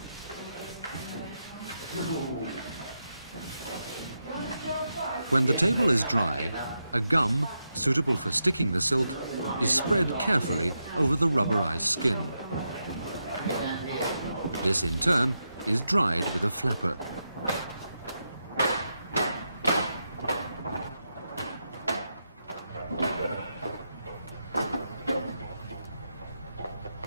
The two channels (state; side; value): inverted; both; correlation -0.85